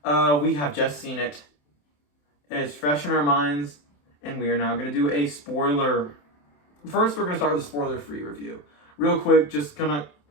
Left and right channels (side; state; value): right; late; 27 ms